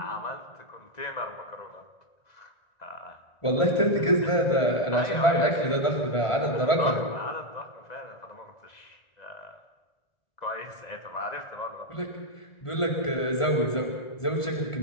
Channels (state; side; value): late; right; 1.4 ms